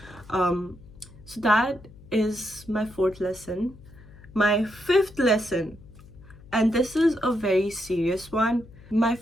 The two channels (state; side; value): noise; left; hum, 21 dB below the sound